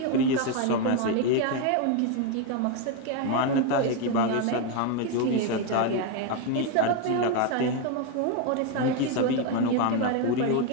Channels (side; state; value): both; different; correlation 0.02